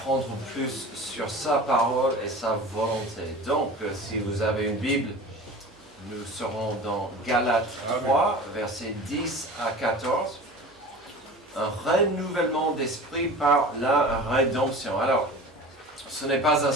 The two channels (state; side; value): normal; both; correlation 0.37